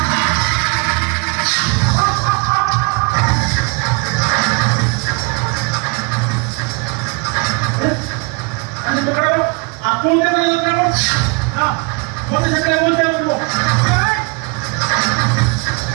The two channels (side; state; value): left; quieter; 31.6 dB